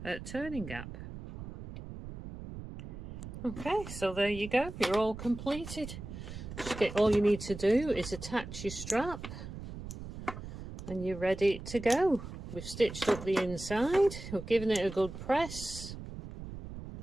turning gap. Okay, so there you go, you're all completed. All you need to do is attach your strap and you're ready to go. We've stitched up the inside, we've given it a good press,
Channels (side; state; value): right; noise; rumble, 10 dB below the sound